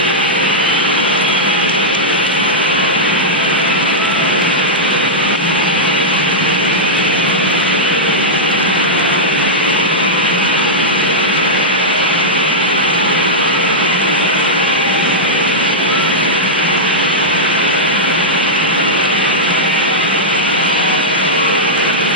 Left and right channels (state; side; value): normal; both; correlation -0.09